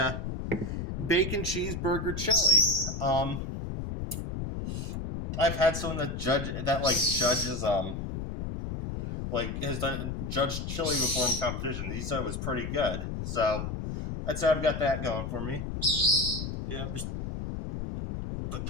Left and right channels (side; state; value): left; noise; rumble, 5 dB below the sound